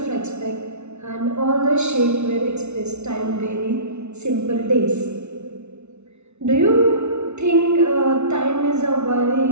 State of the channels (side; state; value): left; late; 0.81 ms